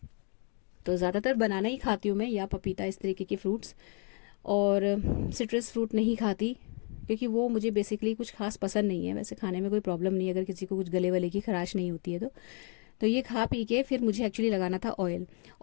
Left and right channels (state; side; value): quieter; right; 39.5 dB